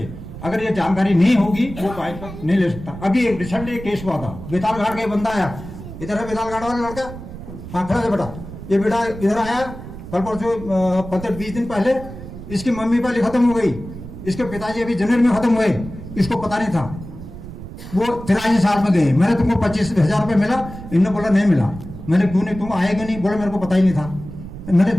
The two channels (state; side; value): noise; right; rumble, 12 dB below the sound